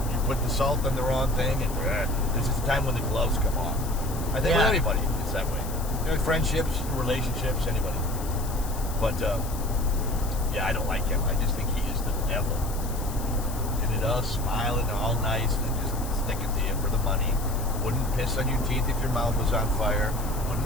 put the salt on the wrong thing, and there's just a time when the gloves come off. I think with anybody, it's that way. Friendships, relationships, anybody. But I don't like him. I just think he is the devil. And it does, smiling, all nice, and just sticking to you for the money. Wouldn't piss on your teeth if your mouth was on fire.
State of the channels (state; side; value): noise; left; hiss, 13 dB below the sound